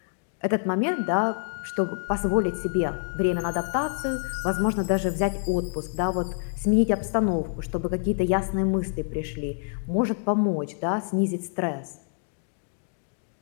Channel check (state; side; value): silent; right; digital silence